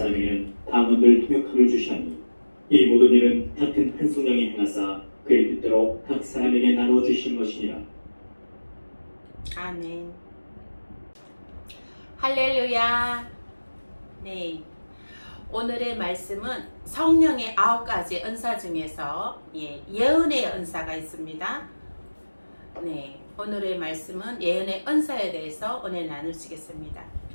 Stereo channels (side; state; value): both; inverted; correlation -1.00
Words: 방언들 통역함을 주시하니 이 모든 일은 같은 한 성령이 행하사 그의 뜻대로 각 사람에게 나눠 주신 것이니라. 아멘. 할렐루야. 네. 오늘의 말씀은 성령의 9가지 은사 중에서 예언의 은사가 있습니다. 네. 오늘의 말씀은 예언의 은사에 대해서 오늘 나누시겠습니다.